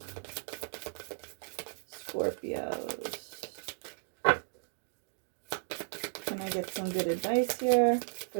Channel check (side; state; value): left; silent; digital silence